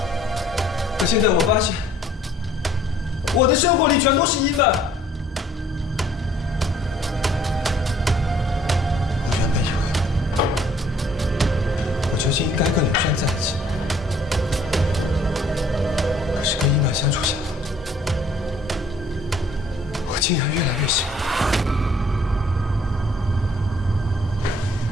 可现在我发现，我的生活里全都是伊曼。我原本以为，我究竟应该跟林轩在一起。可是跟伊曼相处下来，我竟然越来越喜欢。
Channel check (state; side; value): normal; both; correlation 0.59